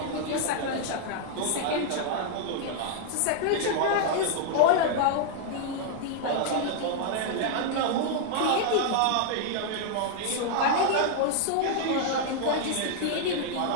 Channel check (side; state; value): both; different; correlation -0.01